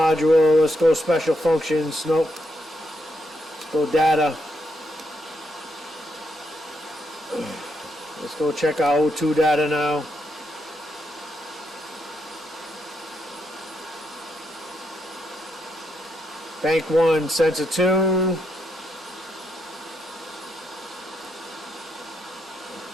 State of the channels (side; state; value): both; normal; correlation 0.80